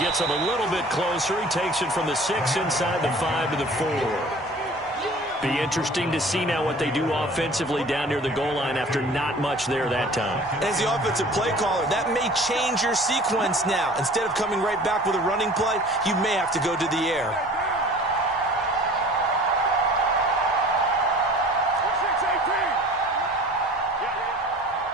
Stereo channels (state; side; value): normal; both; correlation 0.46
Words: gets him a little bit closer. He takes it from the 6 inside the 5 to the 4. Be interesting to see now what they do offensively down near the goal line after not much there that time. As the offensive play caller, that may change your sequence now. Instead of coming right back with a running play, you may have to go to the air.